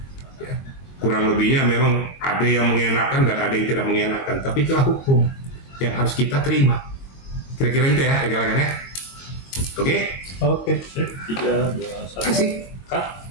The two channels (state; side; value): late; right; 22 ms